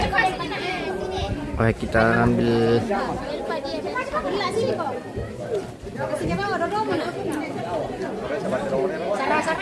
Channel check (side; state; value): both; identical; correlation 1.00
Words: Baik, kita ambil.